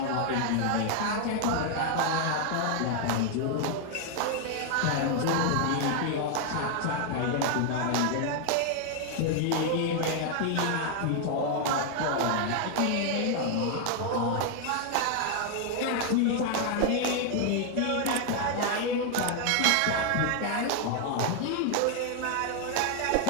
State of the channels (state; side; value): different; both; correlation 0.00